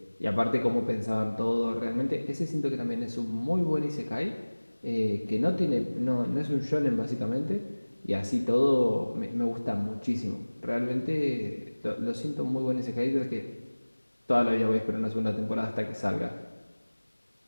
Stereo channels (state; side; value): inverted; both; correlation -1.00